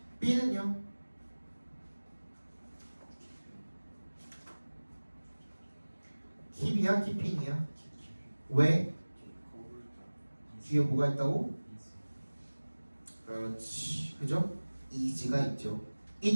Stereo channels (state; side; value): inverted; both; correlation -1.00